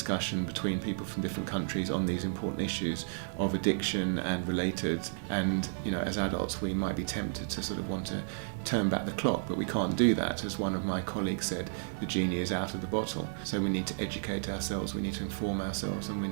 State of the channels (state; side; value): silent; left; digital silence